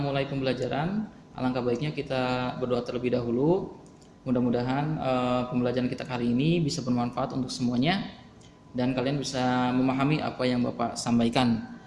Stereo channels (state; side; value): identical; both; correlation 1.00